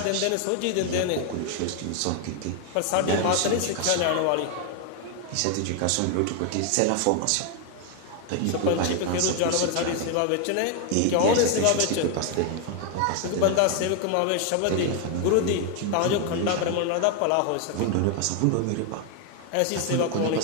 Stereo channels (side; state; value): both; different; correlation 0.01